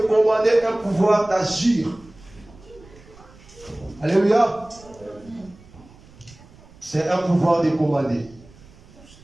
commander, un pouvoir d'agir. Alléluia. C'est un pouvoir de commander.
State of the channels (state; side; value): noise; right; rumble, 24 dB below the sound